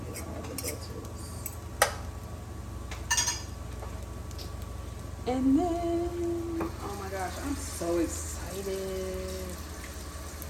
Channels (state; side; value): identical; both; correlation 1.00